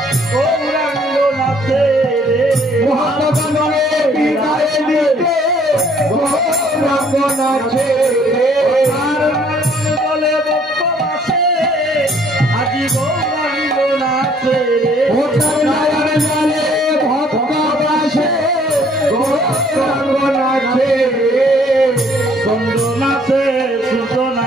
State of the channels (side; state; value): both; normal; correlation 0.61